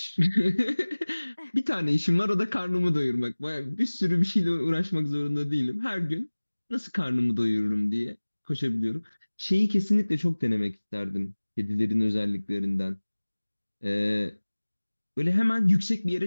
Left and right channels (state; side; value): inverted; both; correlation -1.00